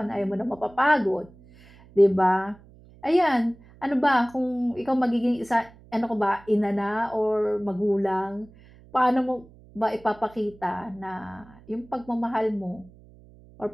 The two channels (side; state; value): right; noise; hum, 24 dB below the sound